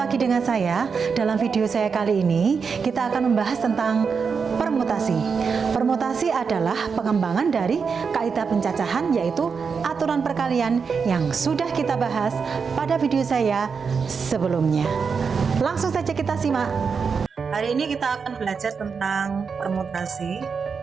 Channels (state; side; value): quieter; left; 5.7 dB